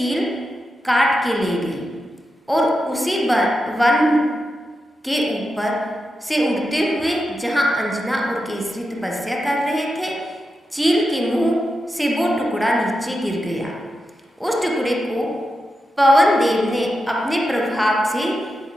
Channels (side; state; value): both; normal; correlation 0.88